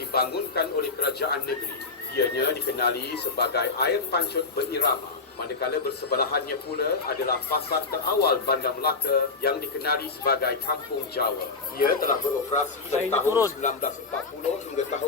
oleh kerajaan negeri. Ianya dikenali sebagai air pancut berirama. Manakala bersebelahannya pula adalah pasar terawal Bandar Melaka yang dikenali sebagai Kampung Jawa. Ia telah beroperasi dari tahun 1940 hingga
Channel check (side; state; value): right; quieter; 4.1 dB